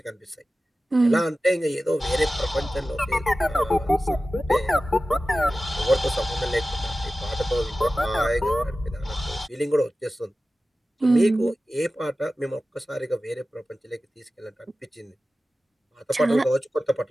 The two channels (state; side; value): normal; both; correlation 0.95